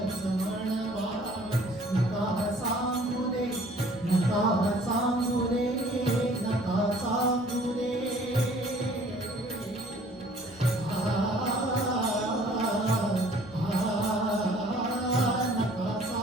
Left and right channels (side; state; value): both; normal; correlation 0.54